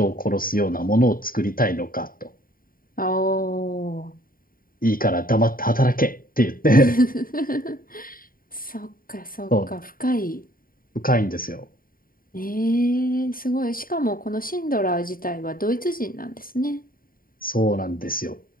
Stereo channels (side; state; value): right; late; 0.41 ms